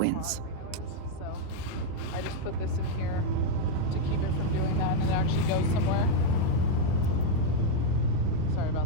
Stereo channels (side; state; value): both; different; correlation 0.00